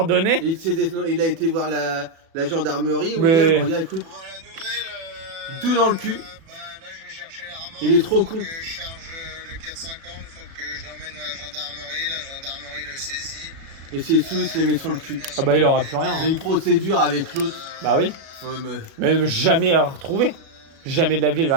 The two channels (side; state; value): left; late; 36 ms